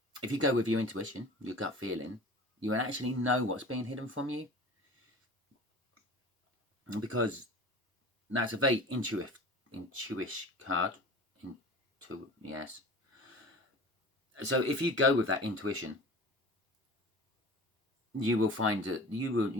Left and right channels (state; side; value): normal; both; correlation 0.39